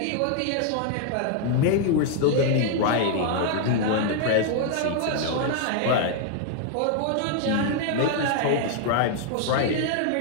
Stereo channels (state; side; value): different; both; correlation 0.00